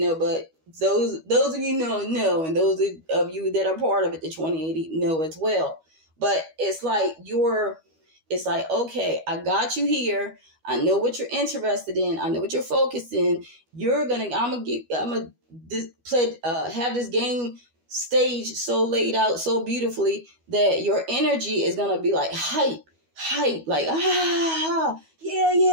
those of you know, and those of you that are part of it, the 2080 know as well. But it's like okay, I got you here. I know what you're interested in. I know what you're focused in. I'm gonna have this game stage so laid out so beautifully that your energy is gonna be like hype, like yeah.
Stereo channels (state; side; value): late; left; 12 ms